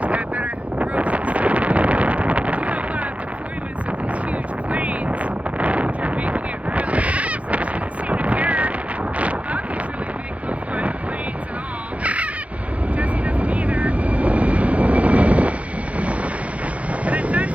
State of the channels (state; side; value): late; left; 0.065 ms